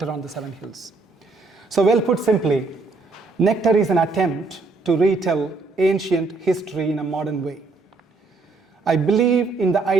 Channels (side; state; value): left; quieter; 3.7 dB